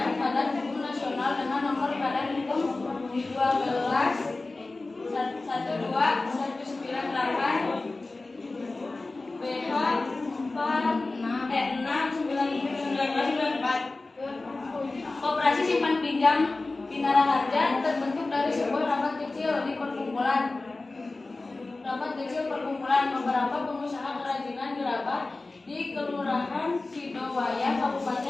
Badan Hukum Nasional dengan nomor Badan Hukum 12/12/1998 BH 6/1994. Koperasi Simpan Pinjam Bina Raharja terbentuk dari sebuah rapat kecil perkumpulan beberapa pengusaha kerajinan gerabah di Kelurahan Sidowaya,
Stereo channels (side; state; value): right; quieter; 3.3 dB